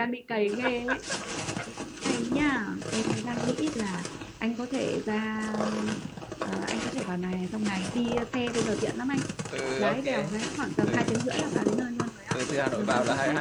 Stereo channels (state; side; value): identical; both; correlation 1.00